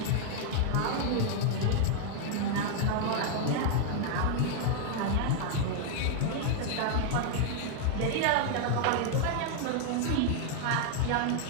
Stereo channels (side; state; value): both; different; correlation 0.00